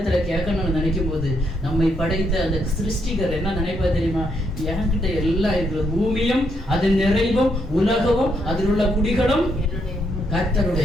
கேட்கணும்னு நினைக்கும் போது நம்மை படைத்த அந்த சிருஷ்டிகர் என்ன நினைப்பா தெரியுமா? என்கிட்ட எல்லாம் இருக்கிறது, பூமியும் அதன் நிறைவும் உலகமும் அதில் உள்ள குடிகளும்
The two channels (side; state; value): both; normal; correlation 0.76